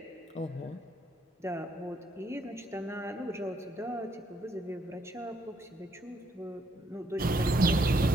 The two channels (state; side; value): normal; both; correlation 0.72